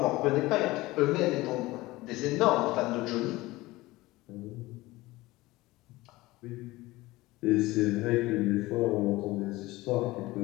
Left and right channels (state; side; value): quieter; right; 19.5 dB